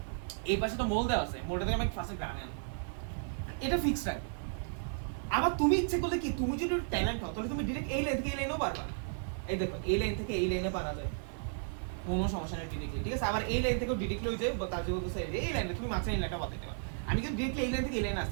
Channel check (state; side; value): silent; left; 55 dB below the other